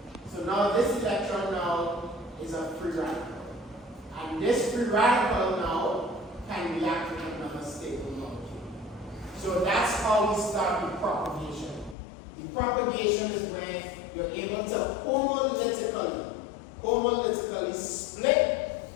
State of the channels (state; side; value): drops out; right; at 12.0 s